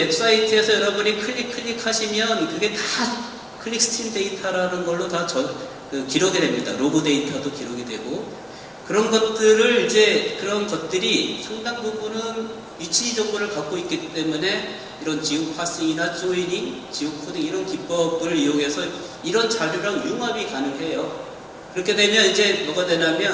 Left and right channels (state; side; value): identical; both; correlation 1.00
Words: 여러분이 클릭하시면 그게 다 클릭스트림 데이터라는 걸로 다 기록이 됩니다. 로고 데이터도 기록이 되고 그런 것들이 상당 부분은 위치 정보를 갖고 있기 때문에 이런 지오 파싱이나 조이닝, 지오 코딩 이런 기법을 이용해서 이런 자료랑 융합이 가능해요. 그렇게 되면 이제 뭐가